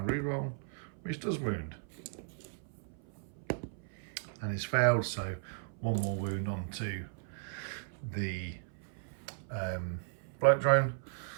reroll, which does wound. And it's failed, so 1 more wound onto the Blight Drone.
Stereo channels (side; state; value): left; silent; 54 dB below the other